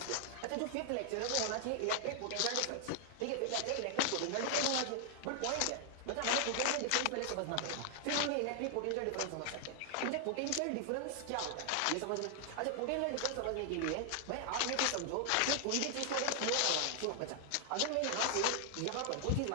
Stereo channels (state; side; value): different; both; correlation 0.00